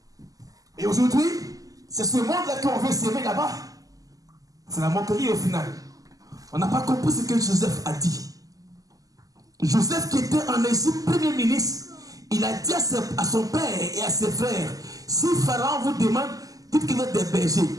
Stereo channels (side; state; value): left; late; 0.17 ms